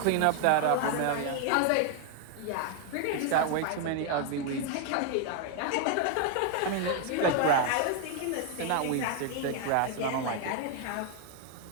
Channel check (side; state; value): both; different; correlation 0.01